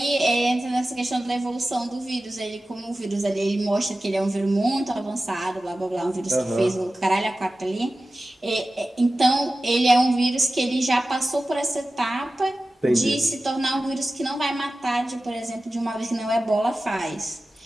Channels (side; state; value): both; normal; correlation 0.95